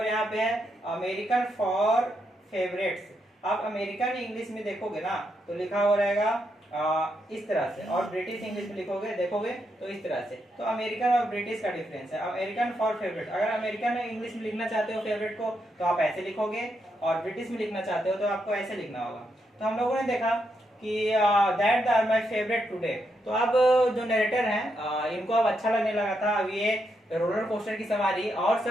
यहाँ पे है। अमेरिकन फॉर फेवरेट्स, आप अमेरिकन इंग्लिश में देखोगे ना तो लिखा हुआ रहेगा इस तरह से, और ब्रिटिश इंग्लिश में लिखोगे देखोगे तो इस तरह से। तो अमेरिकन और ब्रिटिश का डिफरेंस है। अमेरिकन फॉर फेवरेट, अगर अमेरिकन इंग्लिश में लिखना चाहते हो फेवरेट को तो आप ऐसे लिखोगे, और ब्रिटिश में लिखना चाहते हो तो आपको ऐसे लिखना होगा। तो हम लोगों ने देखा कि that are my favourite today. तो अब जो नरेटर हैं इनको अब अच्छा लगने लगा था, अब ये रोलर कोस्टर की सवारी और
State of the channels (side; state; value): both; normal; correlation 0.81